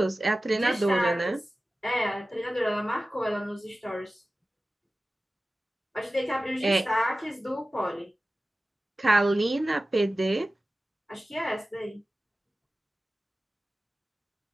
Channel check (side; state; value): both; normal; correlation 0.96